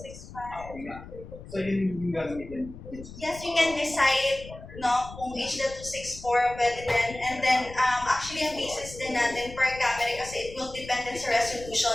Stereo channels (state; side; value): noise; left; rumble, 15 dB below the sound